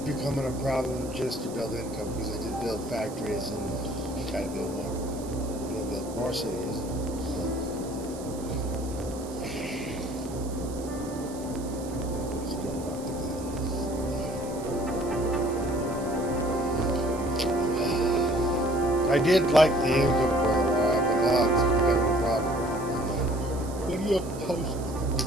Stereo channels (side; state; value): right; noise; hiss, 17 dB below the sound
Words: a problem just to build income because I did build factories and gotta build more income. I didn't build more cities. Still not the good. I did like the income for a while, but now it's becoming a problem. What do you post?